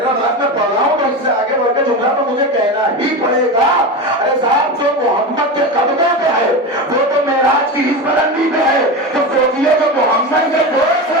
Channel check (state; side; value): normal; both; correlation 0.22